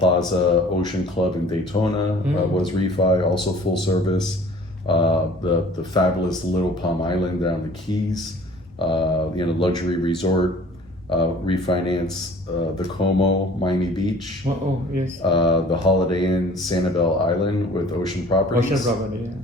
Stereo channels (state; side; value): normal; both; correlation 0.50